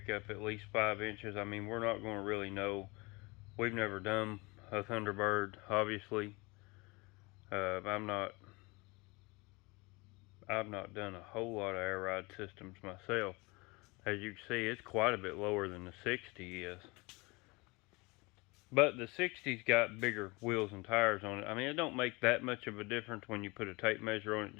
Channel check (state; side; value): quieter; right; 25.8 dB